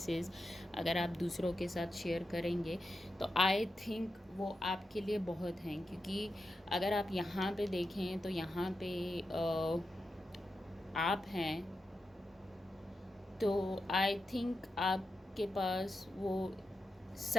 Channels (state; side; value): normal; both; correlation 0.89